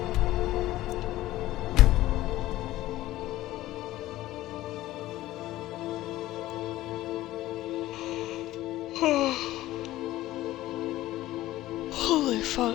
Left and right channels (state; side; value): quieter; right; 15.9 dB